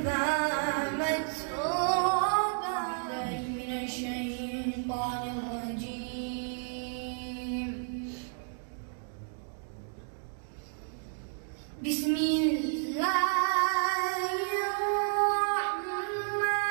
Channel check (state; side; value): silent; left; digital silence